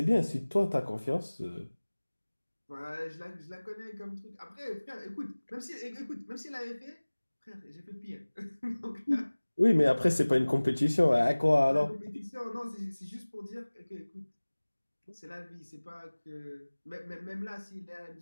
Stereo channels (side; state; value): both; inverted; correlation -1.00